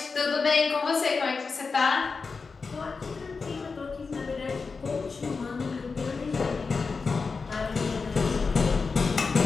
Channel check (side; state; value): right; quieter; 4.6 dB